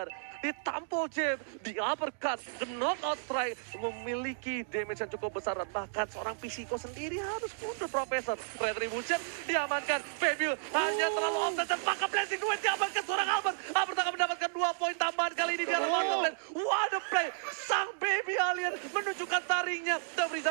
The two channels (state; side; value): silent; left; digital silence